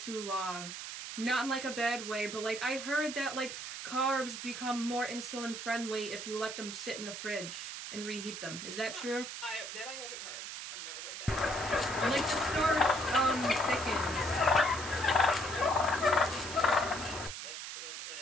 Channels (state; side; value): noise; right; hiss, 8 dB below the sound